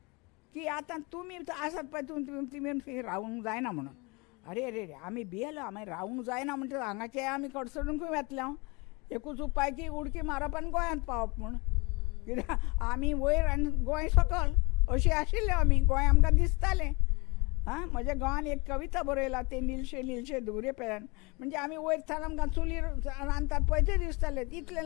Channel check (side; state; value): right; quieter; 27.1 dB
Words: की आतां तुमी आसात पळय तुमी रावूंक जायना म्हणून. अरे रे रे आमी भियेलो, आमी रावूंक जायना म्हणटा हांगाचे आमी कडसडूंक वेतले. एकूच उपाय की उडकी मारप आनी गोंयांत पावप म्हूण. कित्याक आमी वयर आनी गोंय सकयल अशी आशिल्ले आमी. गोंय आमकां दिसतालें. म्हज्या गांवान एक कविता बरयला ते नीलशे नीलशे धुवरे पेल्यान. म्हणजे आमी वयर थान आमकां चुलीर रांदतात पळय तें दिसतालें. इतलें